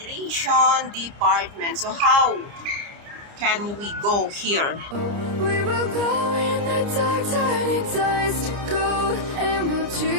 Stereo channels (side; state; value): left; late; 29 ms